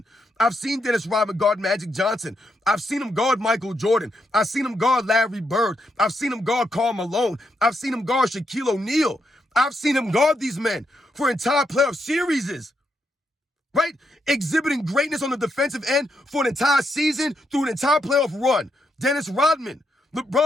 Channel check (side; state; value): both; normal; correlation 0.80